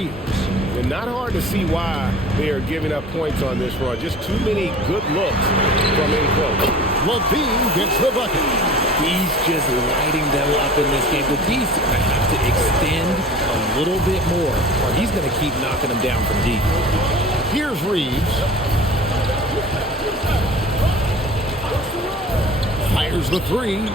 And not hard to see why they are giving up points on this run. Just too many good looks from in close. Levine gets the bucket. He's just lighting them up in this game. But he's going to have to extend a little bit more, or he's going to keep knocking them down from deep. Here's Reeves. Fires the 3.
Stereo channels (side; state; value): both; normal; correlation 0.42